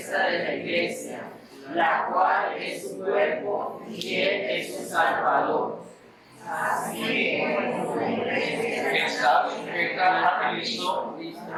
de la iglesia, la cual es su cuerpo y Él es su Salvador. Así como la iglesia está sujeta a Cristo,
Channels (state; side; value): identical; both; correlation 1.00